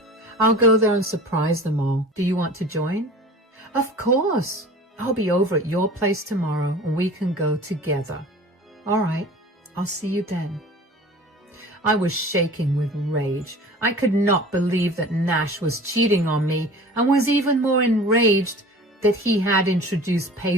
I'll go there and surprise them all. Do you want to join? Of course. I'll be over at your place tomorrow and we can go together. All right, I'll see you then. I was shaking with rage. I could not believe that Nash was cheating on me and was even more enraged that he had introduced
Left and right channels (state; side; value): normal; both; correlation 0.41